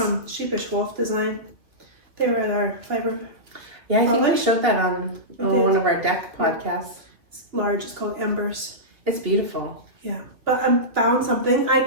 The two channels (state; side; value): late; left; 2.5 ms